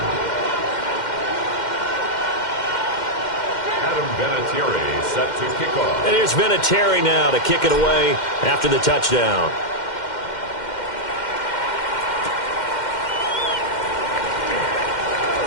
Adam Vinatieri set to kick off. And here's Vinatieri now to kick it away after the touchdown.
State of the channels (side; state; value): right; late; 2.1 ms